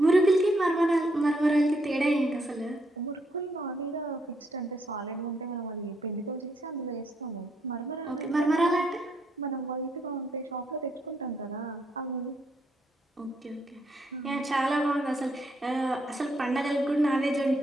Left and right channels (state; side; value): normal; both; correlation 0.75